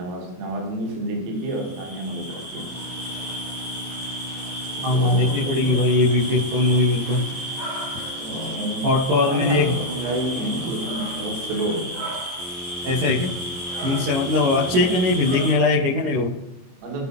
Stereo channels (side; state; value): left; late; 22 ms